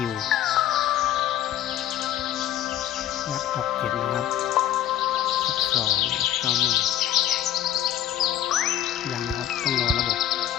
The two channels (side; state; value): right; quieter; 11.6 dB